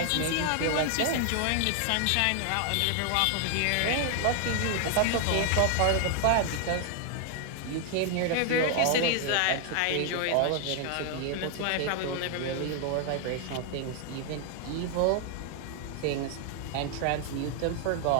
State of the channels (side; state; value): both; different; correlation 0.00